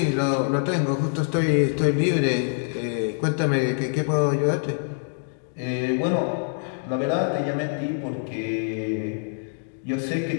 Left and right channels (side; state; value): right; silent; digital silence